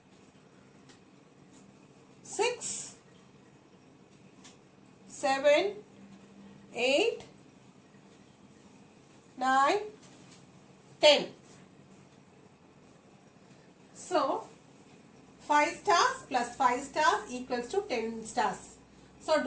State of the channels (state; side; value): identical; both; correlation 1.00